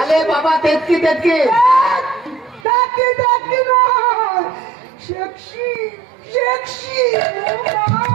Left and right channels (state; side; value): drops out; left; at 2.7 s